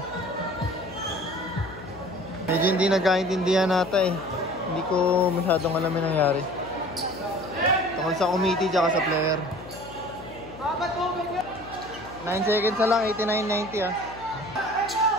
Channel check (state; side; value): noise; left; hum, 16 dB below the sound